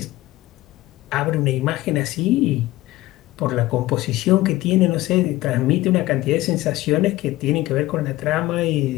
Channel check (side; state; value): right; quieter; 17.2 dB